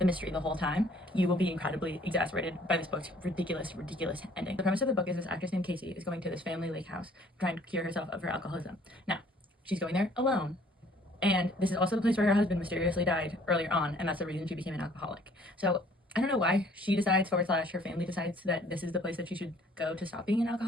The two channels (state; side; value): normal; both; correlation 0.58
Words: mystery the whole time, you will be incredibly exasperated by this book's ridiculous ending. The premise of the book is this actress named Casey is going to this family lake house trying to cure herself of her alcoholism. Now, she's going there alone. And this is also the place where her husband mysteriously died earlier on, and that's the reason she became an alcoholic. So I don't know why she decides / her family decides that this is the place that she should go to stop being an